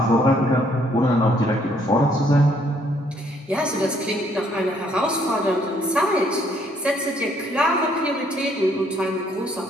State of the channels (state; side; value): normal; both; correlation 0.66